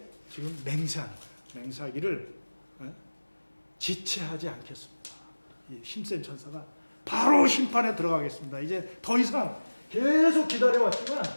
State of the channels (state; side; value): inverted; both; correlation -1.00